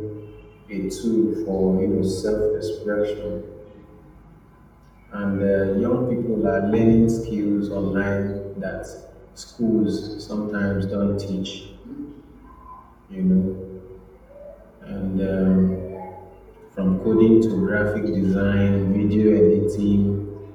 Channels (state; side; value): identical; both; correlation 1.00